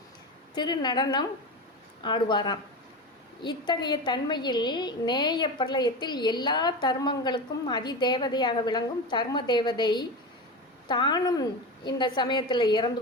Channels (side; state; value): both; normal; correlation 0.23